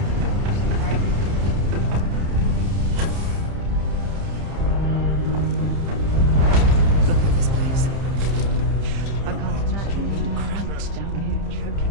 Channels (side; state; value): left; late; 30 ms